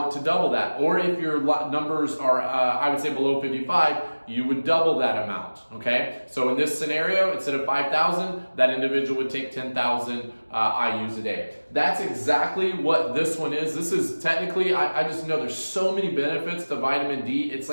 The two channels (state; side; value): inverted; both; correlation -1.00